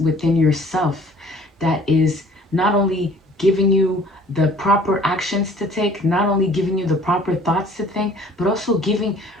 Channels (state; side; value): normal; both; correlation 0.52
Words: within yourself that is not only giving you the proper actions to take, not only giving you the proper thoughts to think, but also